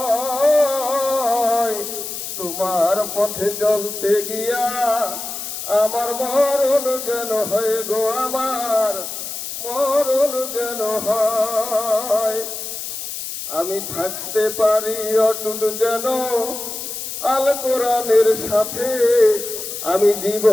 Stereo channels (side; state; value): left; noise; hiss, 7 dB below the sound